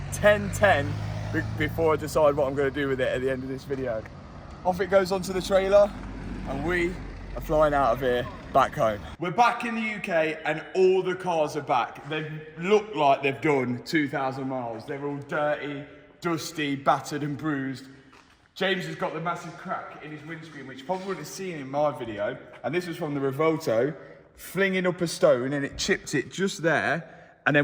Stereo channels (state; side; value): identical; both; correlation 1.00